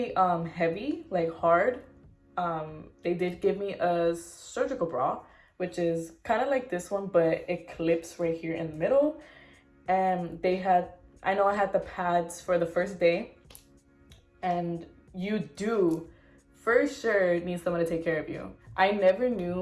heavy, like hard. They did give me a surgical bra, which is kind of like this one, but it clips right here in the middle. And they had, I know I had the pads for the first day, and you do for sure need someone to take care of you. I never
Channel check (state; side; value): identical; both; correlation 1.00